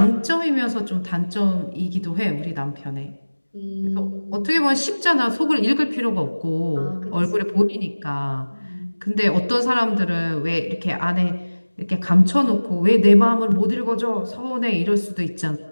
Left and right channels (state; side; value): inverted; both; correlation -1.00